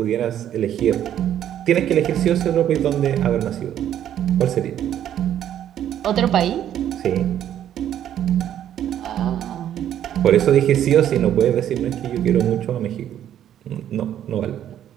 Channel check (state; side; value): quieter; left; 10.7 dB